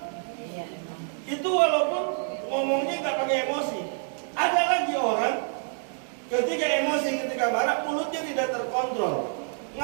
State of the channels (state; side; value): silent; left; 60 dB below the other